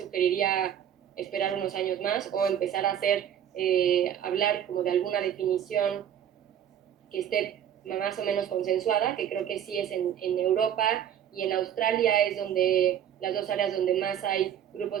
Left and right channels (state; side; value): quieter; left; 9.7 dB